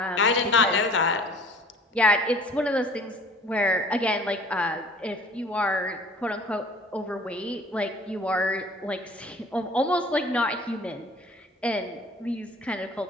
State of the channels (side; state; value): both; normal; correlation 0.49